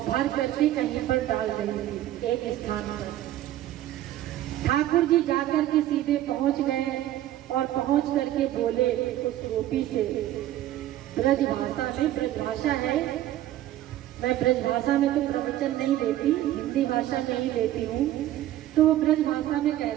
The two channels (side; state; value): left; quieter; 13.6 dB